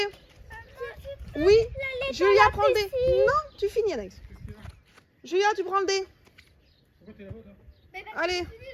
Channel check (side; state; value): both; identical; correlation 1.00